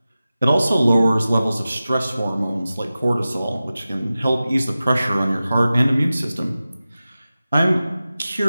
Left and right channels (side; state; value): both; inverted; correlation -0.95